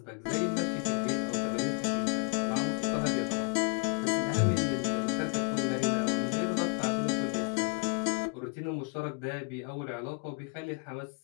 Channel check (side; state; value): right; quieter; 33.4 dB